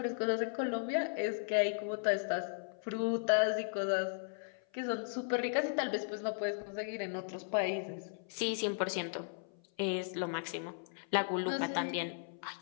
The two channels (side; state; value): right; silent; 54 dB below the other